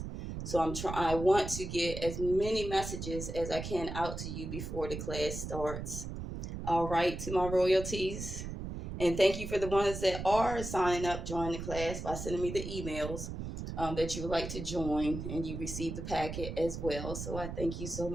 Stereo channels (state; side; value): noise; right; rumble, 7 dB below the sound